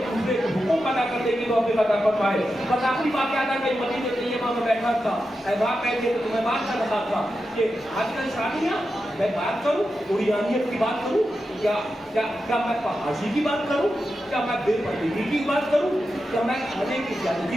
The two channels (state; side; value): normal; both; correlation 0.89